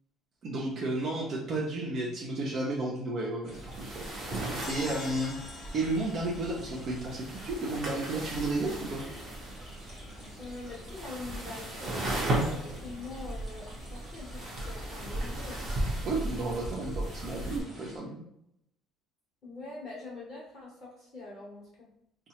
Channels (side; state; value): both; normal; correlation 0.58